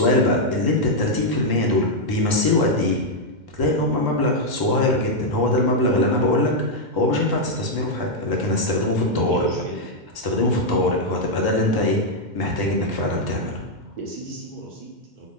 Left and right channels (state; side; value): late; left; 2.1 ms